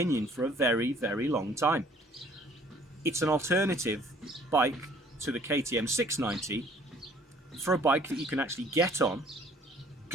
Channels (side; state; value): both; normal; correlation 0.57